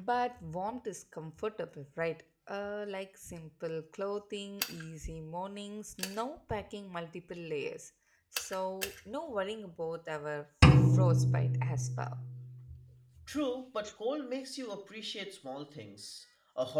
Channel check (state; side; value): identical; both; correlation 1.00